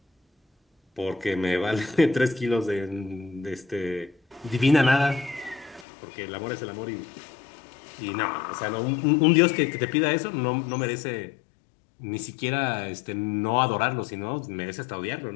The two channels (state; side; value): drops out; right; at 5.9 s